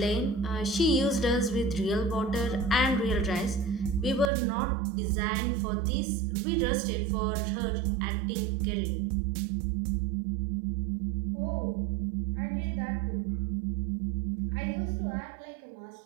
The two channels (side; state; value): left; drops out; at 4.3 s